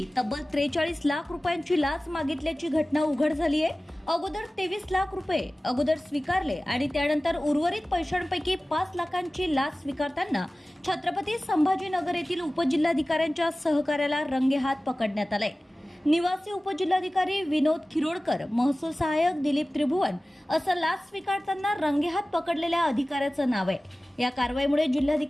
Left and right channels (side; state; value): both; normal; correlation 0.97